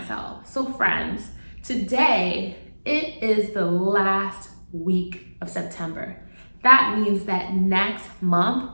So friends, today it is the last week of September. That means that next month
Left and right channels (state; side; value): inverted; both; correlation -1.00